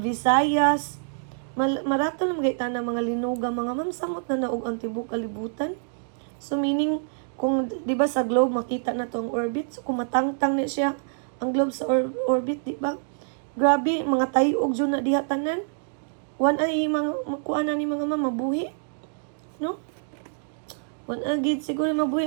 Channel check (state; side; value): silent; left; digital silence